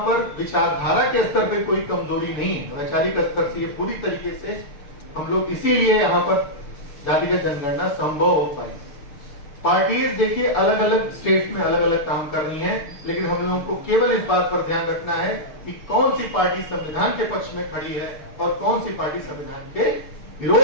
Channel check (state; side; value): late; right; 6.6 ms